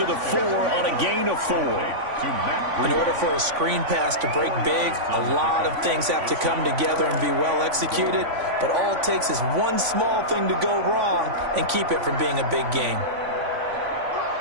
the 4 on a gain of 4. In order for a screen pass to break big, a lot of things have to come together and be well executed. But all it takes is one small thing to go wrong and keep it from being a big game.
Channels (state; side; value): late; left; 3.5 ms